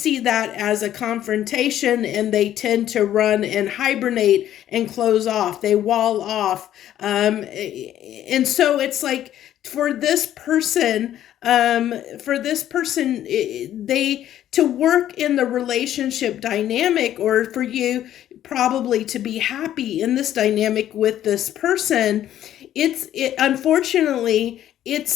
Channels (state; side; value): quieter; right; 11.8 dB